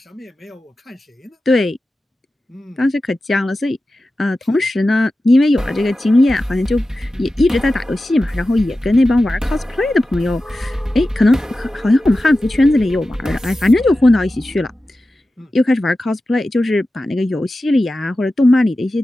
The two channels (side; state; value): both; normal; correlation 0.94